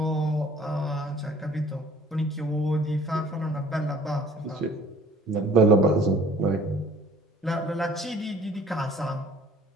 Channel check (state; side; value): normal; both; correlation 0.53